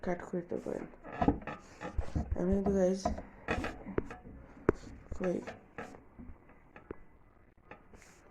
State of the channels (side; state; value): both; identical; correlation 1.00